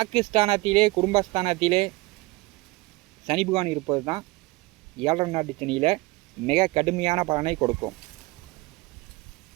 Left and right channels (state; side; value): quieter; left; 22.0 dB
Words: குடும்பஸ்தானத்திலே சனி பகவான் இருப்பது தான் 7.5 நாட்டு சனியில் மிக கடுமையான பலனை கொடுக்கும்.